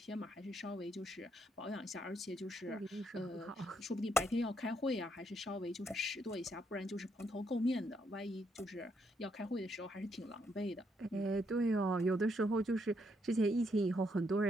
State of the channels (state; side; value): normal; both; correlation 0.75